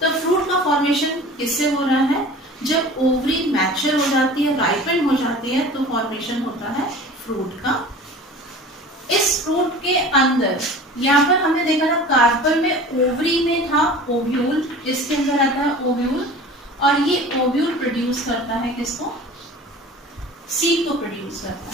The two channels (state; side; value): normal; both; correlation 0.40